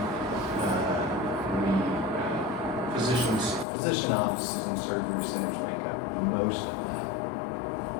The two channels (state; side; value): drops out; right; at 3.7 s